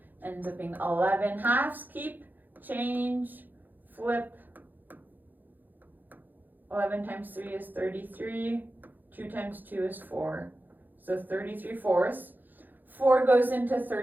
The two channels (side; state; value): left; late; 0.087 ms